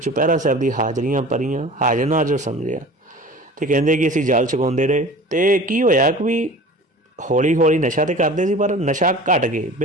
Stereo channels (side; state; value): both; normal; correlation 0.40